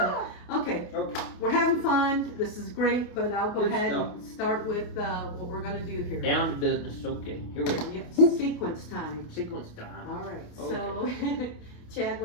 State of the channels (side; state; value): right; late; 28 ms